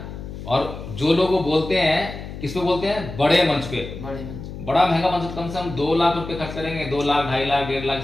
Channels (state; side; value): noise; left; hum, 10 dB below the sound